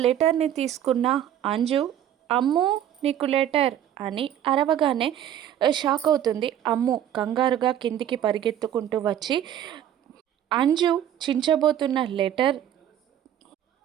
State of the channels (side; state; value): left; quieter; 10.7 dB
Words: లెటర్ని తీసుకున్న అంజు అమ్ము నీకు లెటర్ అని అరవగానే షాక్ అవుతుంది. అమ్ము కంగారుగా కిందికి పరిగెత్తుకుంటూ వచ్చి అంజు చించబోతున్న లెటర్